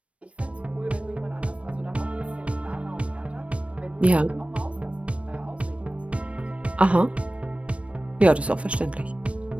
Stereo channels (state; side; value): late; left; 0.062 ms